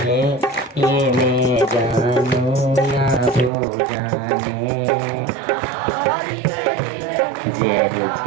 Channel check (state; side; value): drops out; left; at 3.5 s